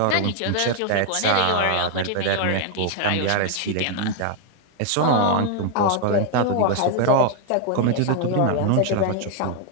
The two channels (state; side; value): different; both; correlation 0.00